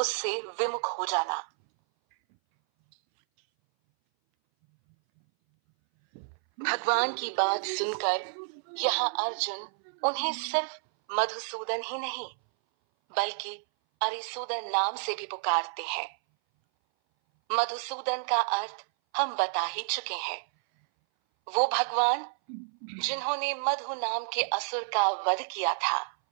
विमुख हो जाना। भगवान की बात सुनकर यहाँ अर्जुन उन्हें सिर्फ मधुसूदन ही नहीं, बल्कि अरिसूदन नाम से भी पुकारते हैं। मधुसूदन का अर्थ हम बता ही चुके हैं। वो भगवान जिन्होंने मधु नाम के असुर का वध किया था।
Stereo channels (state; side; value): silent; left; 58 dB below the other